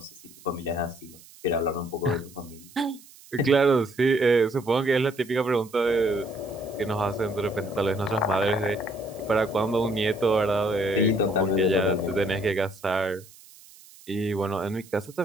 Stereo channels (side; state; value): right; noise; hiss, 23 dB below the sound